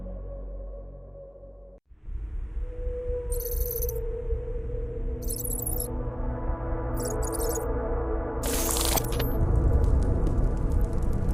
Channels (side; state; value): both; identical; correlation 1.00